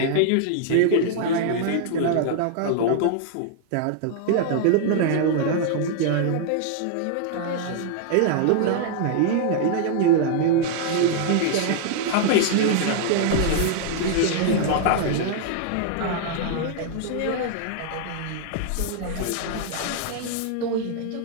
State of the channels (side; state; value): both; different; correlation -0.01